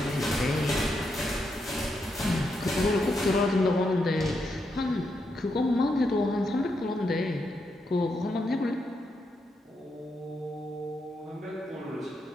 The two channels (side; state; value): both; normal; correlation 0.82